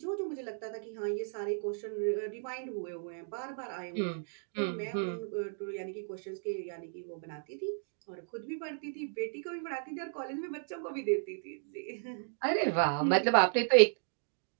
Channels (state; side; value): silent; left; digital silence